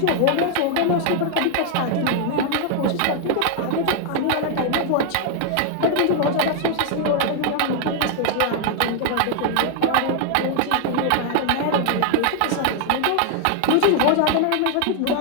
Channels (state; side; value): different; both; correlation 0.00